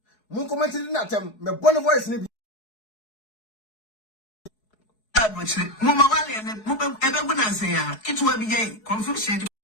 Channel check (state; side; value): late; right; 4.7 ms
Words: mun comment natem me bone voice ni bi mama wale ne ebe gunanse ya kitwa bi je confusion